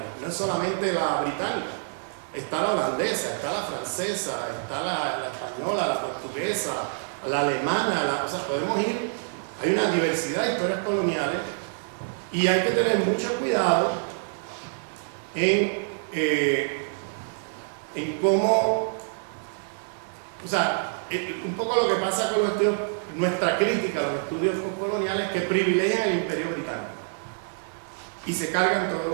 no es solamente la británica. Está la holandesa, está la francesa, está la española, la portuguesa, la alemana, o sea, podemos ir, hay una diversidad de historias coloniales y hay que tener mucho cuidado en cómo, o sea, un poco lo que pasa con los estudios, nuestra crítica a los estudios postcoloniales que privilegian el imperio británico y se cargan todos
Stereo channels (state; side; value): silent; left; digital silence